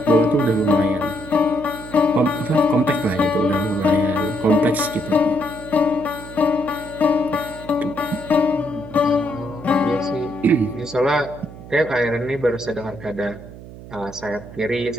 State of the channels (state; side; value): noise; right; hum, 15 dB below the sound